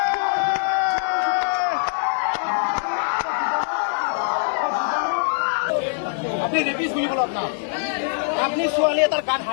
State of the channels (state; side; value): silent; right; digital silence